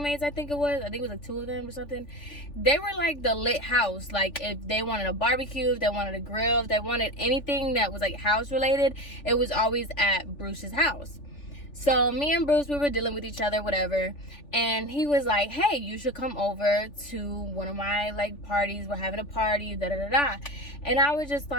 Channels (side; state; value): right; late; 3.4 ms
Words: I think it was like 2 of them or something. They were like the lit house. Like, if they wanted a barbecue, if they wanted a grill, if they wanted anything that was like house related, it was always at Bruce's house. So me and Bruce, we were dealing with each other, whatever, and he was like, hey, you should come over to one of my like parties, we're having a party, da da da da. And I was just